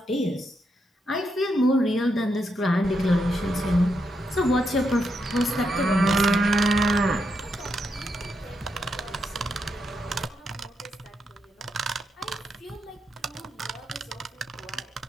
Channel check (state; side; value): normal; both; correlation 0.82